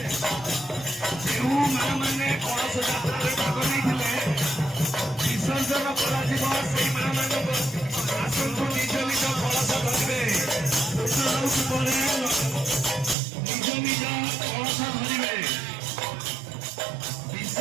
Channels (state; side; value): drops out; left; at 13.2 s